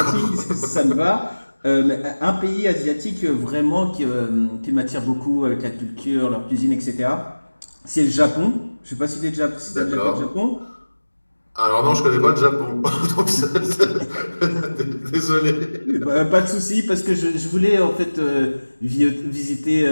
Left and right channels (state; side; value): inverted; both; correlation -1.00